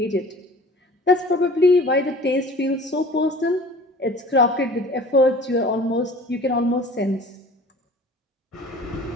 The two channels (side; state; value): both; normal; correlation 0.45